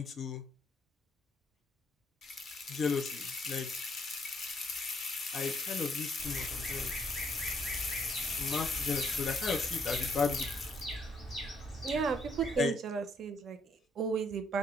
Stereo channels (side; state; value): both; normal; correlation 0.70